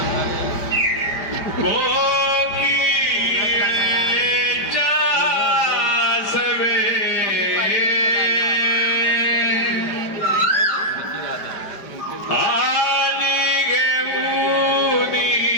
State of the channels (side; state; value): right; late; 4.9 ms